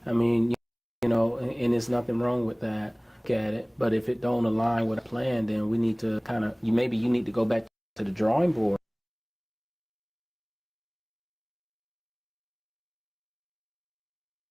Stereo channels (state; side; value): identical; both; correlation 1.00